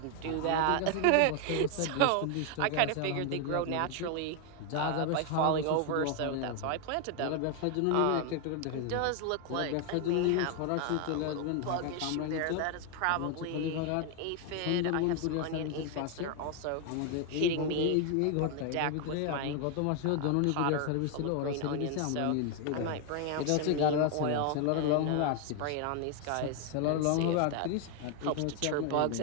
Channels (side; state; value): both; different; correlation 0.01